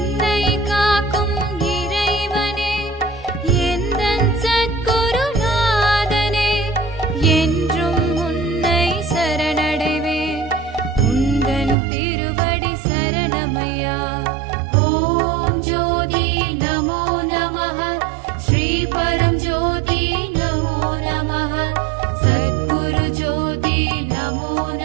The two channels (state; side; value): drops out; left; at 11.8 s